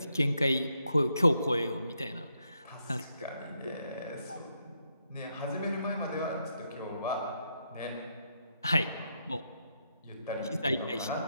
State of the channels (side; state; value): both; inverted; correlation -0.79